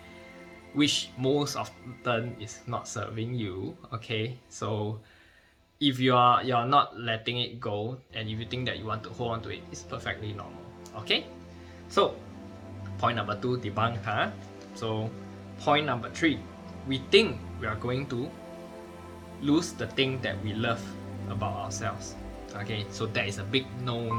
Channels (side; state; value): both; identical; correlation 1.00